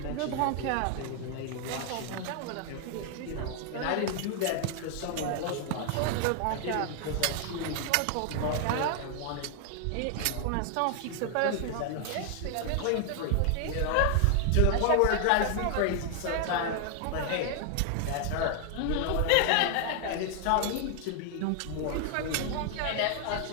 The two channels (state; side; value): different; both; correlation 0.00